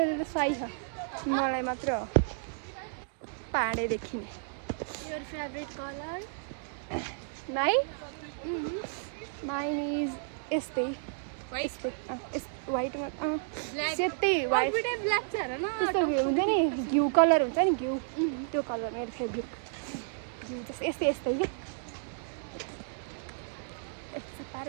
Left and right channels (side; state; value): left; silent; digital silence